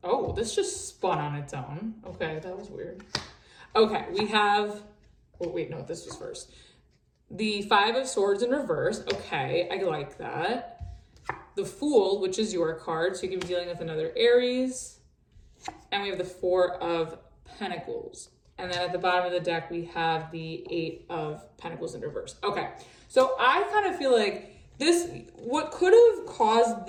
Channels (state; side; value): identical; both; correlation 1.00